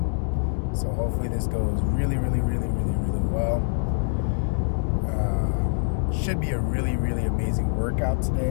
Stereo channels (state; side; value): silent; right; digital silence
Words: So hopefully this goes really well. Should be a really amazing workout